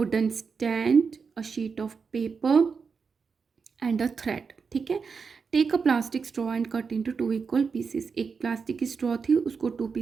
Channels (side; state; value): left; quieter; 5.4 dB